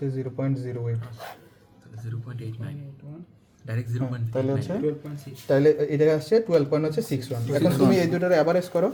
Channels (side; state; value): both; identical; correlation 1.00